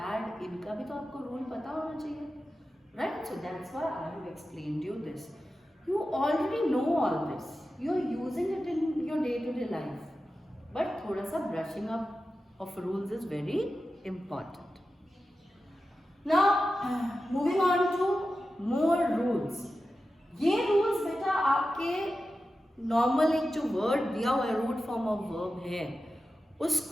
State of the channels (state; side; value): normal; both; correlation 0.92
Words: इनका भी तो आपको रूल पता होना चाहिए. Right. So that's why I have explained you this. You already know all this, you are using it in your day to day life, but थोड़ा सा brushing up of rules is very important. Now moving on to more rules. ये rules बेटा आपके normal एक जो word दिया हुआ है, रूट फॉर्म ऑफ वर्ब है,